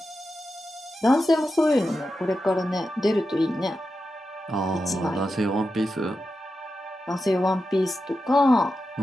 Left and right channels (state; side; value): normal; both; correlation 0.90